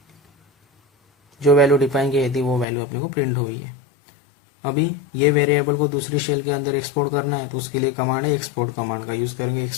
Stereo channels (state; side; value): drops out; right; at 2.7 s